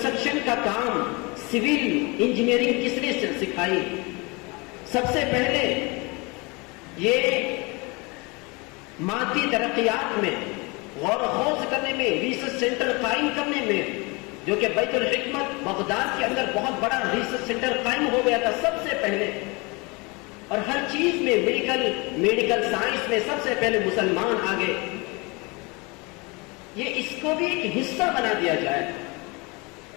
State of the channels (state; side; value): quieter; right; 27.5 dB